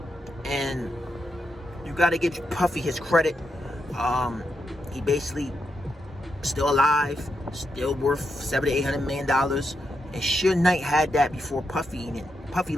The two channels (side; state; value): both; normal; correlation 0.83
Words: And you gotta give Puffy his credit. He basically still alive, still worth $700-800 million. And Suge Knight had that before Puffy. And Puffy